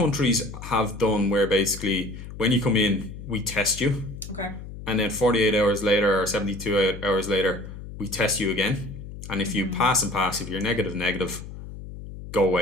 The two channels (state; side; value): noise; left; hum, 12 dB below the sound